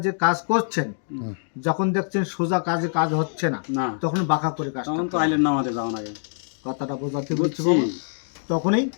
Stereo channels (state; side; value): silent; right; digital silence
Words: যে কাজ করছেন, যখন দেখছেন সোজা কাজে কাজ হচ্ছে না, তখন বাঁকা করে কাজ, কথাটা বোঝাতে বলছি বাবা, তখনই